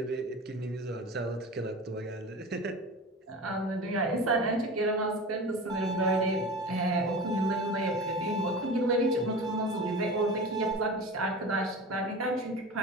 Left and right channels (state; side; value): normal; both; correlation 0.33